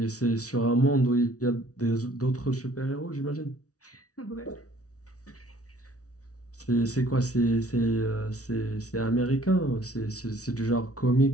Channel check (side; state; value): right; late; 0.67 ms